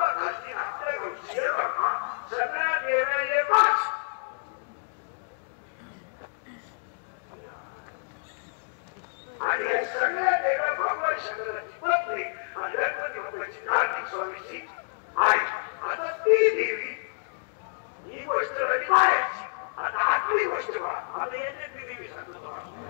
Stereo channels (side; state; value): right; silent; digital silence